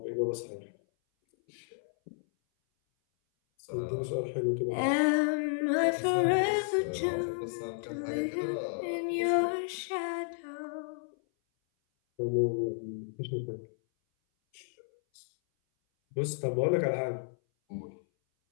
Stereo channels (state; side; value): silent; right; 56 dB below the other